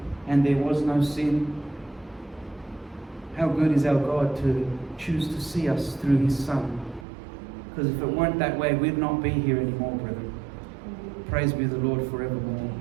and there was no sin. How good is our God to choose to see us through his Son. Because if it weren't that way, we'd not be here anymore, brethren. Praise be the Lord forevermore.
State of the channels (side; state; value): left; drops out; at 7.1 s